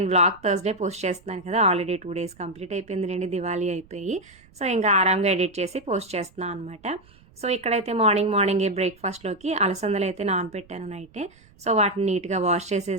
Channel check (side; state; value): right; noise; rumble, 27 dB below the sound